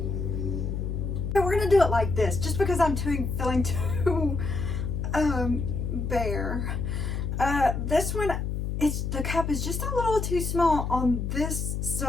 We're gonna do it like this, just because I'm feeling too bare. This one, the cup is just a little too small on this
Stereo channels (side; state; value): left; noise; hum, 2 dB below the sound